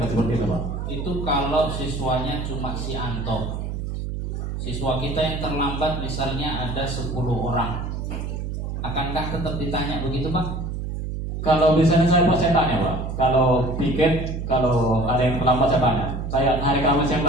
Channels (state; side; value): noise; right; hum, 4 dB below the sound